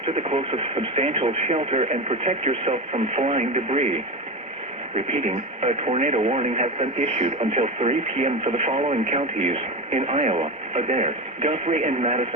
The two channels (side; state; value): both; normal; correlation 0.21